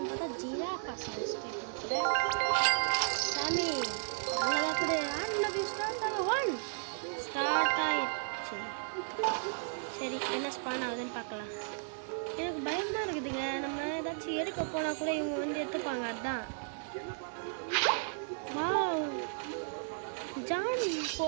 பார்த்தா ஜிராஃபா செலஸ்டே கொடுக்குறேன். சாமி நல்லதாக கொடு. ஆட்மின் வியூஸ் ஸ்டார்ட் ஆயிடுச்சு. சரி, என்ன ஸ்பான் ஆகுதுன்னு பார்க்கலாம். எனக்கு பயமாக இருக்குதுங்க. நம்ம ஏதாச்சும் எடுக்க போனால் கூட இவங்க வந்து எடுத்துப்பாங்க. அதுதான் வாவ், ஜான்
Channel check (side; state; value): left; silent; digital silence